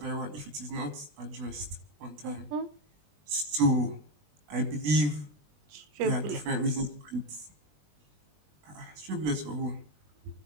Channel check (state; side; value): late; left; 20 ms